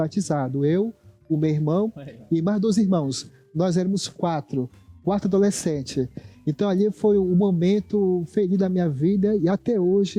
Eu, o meu irmão e mais 2 irmãos. Nós éramos 4 adolescentes. Então ali foi um momento feliz da minha vida e até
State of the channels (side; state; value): both; identical; correlation 1.00